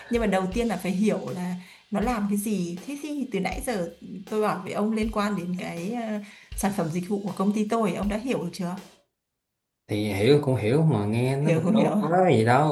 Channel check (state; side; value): identical; both; correlation 1.00